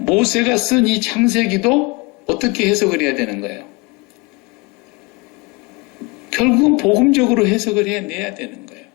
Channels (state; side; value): quieter; right; 26.5 dB